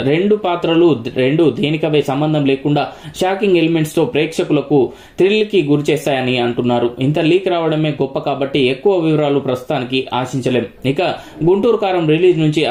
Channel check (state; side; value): identical; both; correlation 1.00